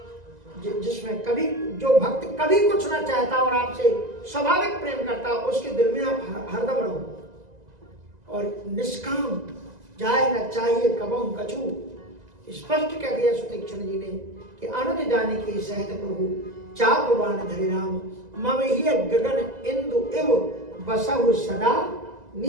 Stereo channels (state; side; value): late; left; 2.0 ms